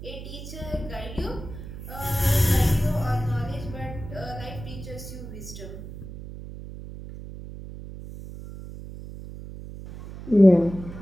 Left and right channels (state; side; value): noise; right; hum, 12 dB below the sound